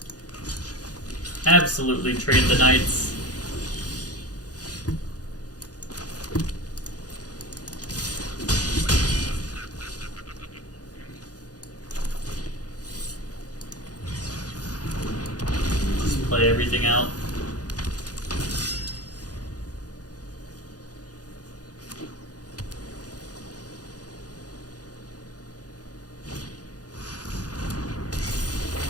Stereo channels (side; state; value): right; late; 0.68 ms